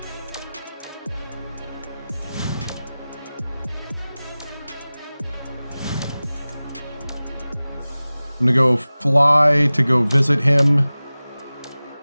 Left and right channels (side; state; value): both; inverted; correlation -0.98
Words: I'm gonna go fly to go visit him. I'm